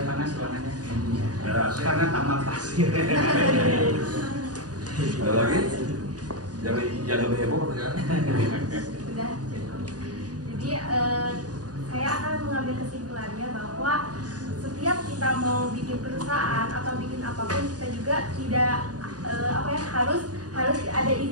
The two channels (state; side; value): late; left; 0.68 ms